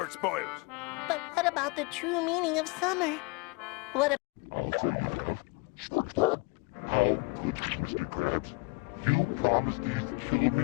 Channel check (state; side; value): quieter; right; 27.5 dB